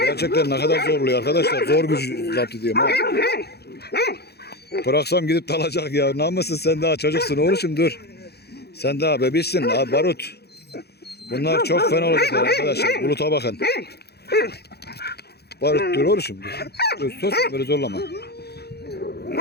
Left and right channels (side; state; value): right; late; 0.47 ms